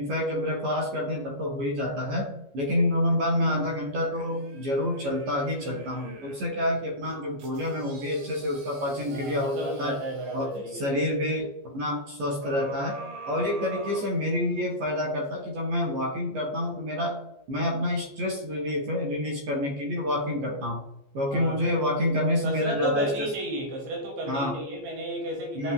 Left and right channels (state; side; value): late; left; 14 ms